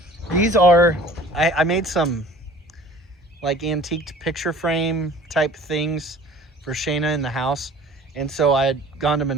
These are, I made some like antiqued picture frame type things for Shayna in the house. And so I had gone to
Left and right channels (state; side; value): normal; both; correlation 0.47